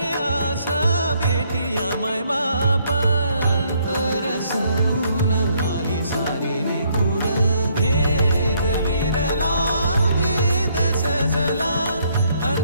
आस भेटी आमाय बापांतर सरून आली सारी लेकुर भेद विरला भेद सजला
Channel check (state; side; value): inverted; both; correlation -0.69